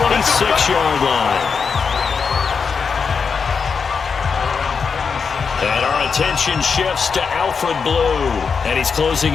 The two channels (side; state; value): right; quieter; 5.7 dB